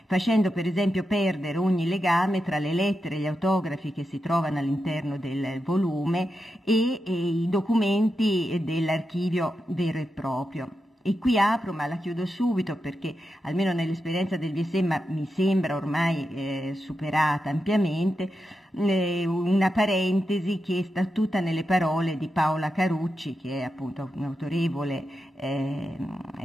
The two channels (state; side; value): normal; both; correlation 0.88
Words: facendo per esempio perdere ogni legame tra le lettere e gli autografi che si trovano all'interno del volume e i documenti dell'archivio vero e proprio. E qui apro, ma la chiudo subito perché almeno nell'esperienza del VSE mi sembra ormai superata ampiamente, una parentesi che sta tutta nelle parole di Paola Carucci, che è appunto un autorevole